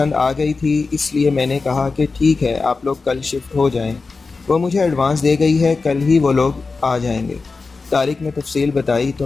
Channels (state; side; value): quieter; right; 4.2 dB